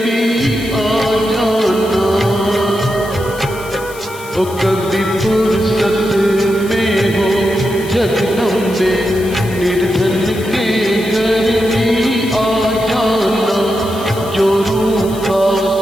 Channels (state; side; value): noise; left; hiss, 17 dB below the sound